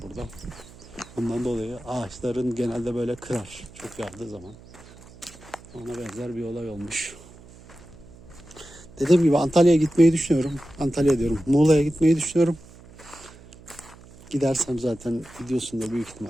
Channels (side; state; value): right; noise; hum, 21 dB below the sound